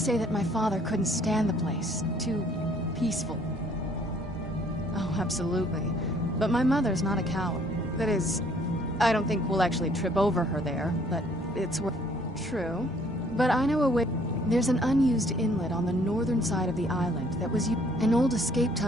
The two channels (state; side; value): normal; both; correlation 0.61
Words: that my father couldn't stand the place. Too peaceful. Oh, absolutely. But my mother's not a coward. That is, I don't think we'll actually trip over her there, but it's true. But I know a way. There's an unused inlet on the northern side of the island that was an old escape